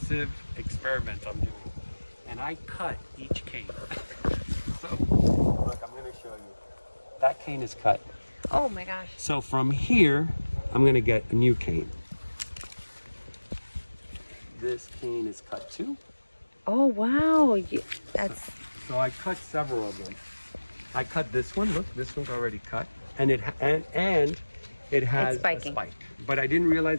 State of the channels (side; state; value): both; inverted; correlation -1.00